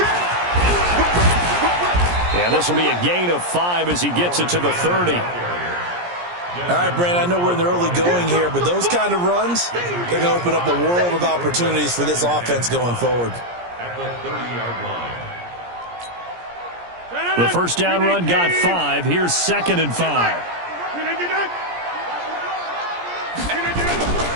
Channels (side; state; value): left; late; 17 ms